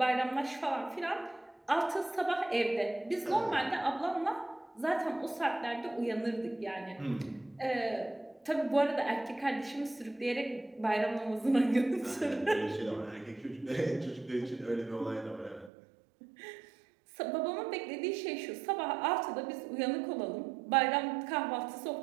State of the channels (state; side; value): drops out; left; at 15.7 s